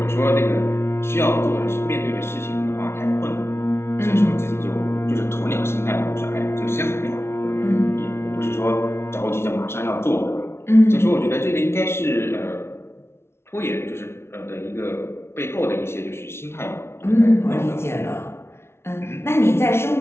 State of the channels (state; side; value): late; right; 0.12 ms